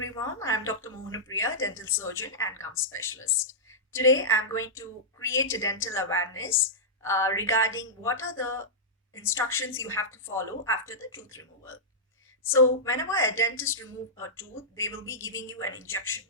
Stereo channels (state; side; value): normal; both; correlation -0.12